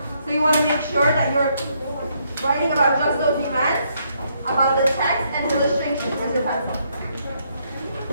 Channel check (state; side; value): inverted; both; correlation -0.73